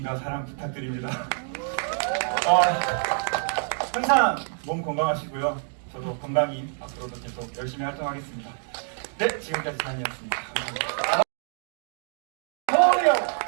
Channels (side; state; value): left; silent; 60 dB below the other